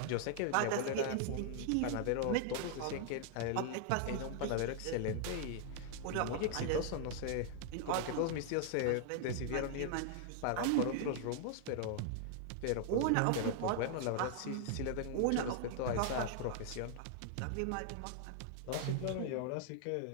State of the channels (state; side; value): different; both; correlation -0.01